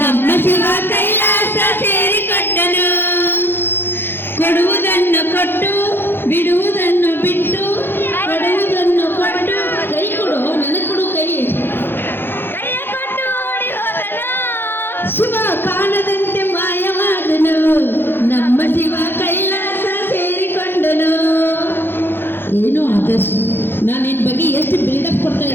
ಶಿವ ಕೈಲಾಸ ಸೇರಿಕೊಂಡನು ಕೊಡುವುದನ್ನು ಕೊಟ್ಟು ಬಿಡುವುದನ್ನು ಬಿಟ್ಟು ಏನೋ ಆದರ್ಶ್, ನಾನು ನಿನ್ನ ಬಗ್ಗೆ ಎಷ್ಟು ಬಿಲ್ಡಪ್ ಕೊಡ್ತಾ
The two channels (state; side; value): late; right; 0.10 ms